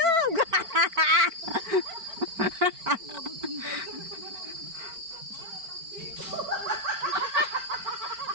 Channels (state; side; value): late; left; 4.4 ms